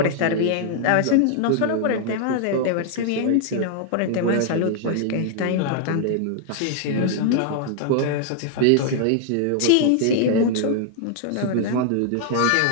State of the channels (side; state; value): both; different; correlation 0.00